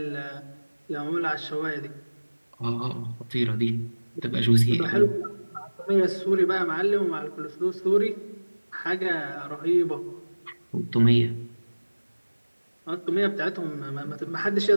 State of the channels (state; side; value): inverted; both; correlation -1.00